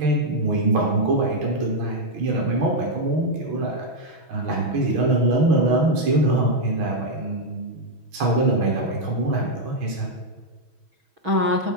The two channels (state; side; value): late; left; 6.2 ms